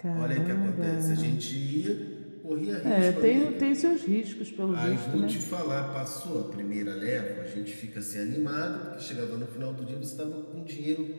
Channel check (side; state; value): both; inverted; correlation -1.00